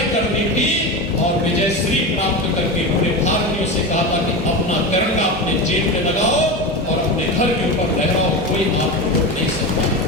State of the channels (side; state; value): both; normal; correlation 0.22